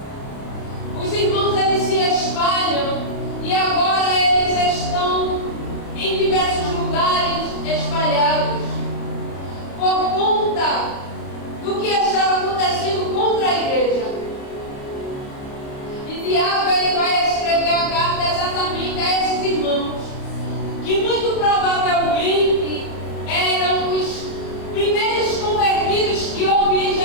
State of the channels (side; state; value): right; late; 29 ms